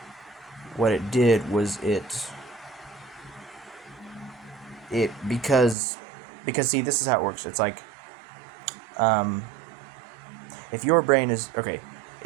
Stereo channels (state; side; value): drops out; left; at 5.8 s